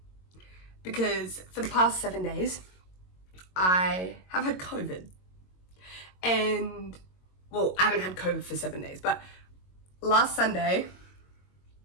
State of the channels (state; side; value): late; right; 22 ms